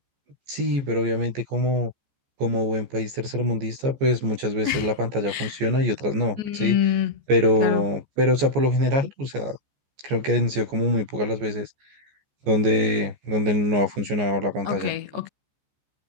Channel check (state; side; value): late; left; 14 ms